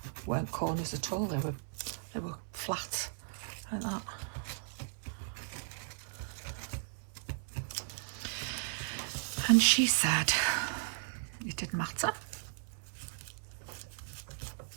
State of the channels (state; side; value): silent; left; 54 dB below the other